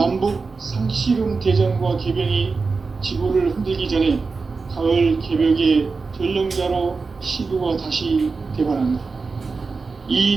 상씨름 대전과 궤병이 지구를 흔들기 전에 가을 개벽의 전령자로 시도가 다시 대발한다.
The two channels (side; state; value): left; quieter; 4.4 dB